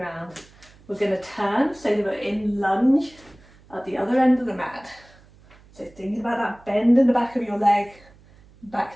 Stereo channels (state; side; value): noise; right; hum, 26 dB below the sound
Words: We're going to turn so that we're in lunge at the other end of the mat. So thinking about that bend in the back of your leg, back